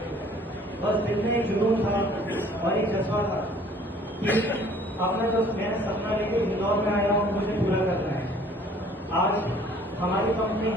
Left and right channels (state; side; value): normal; both; correlation 0.54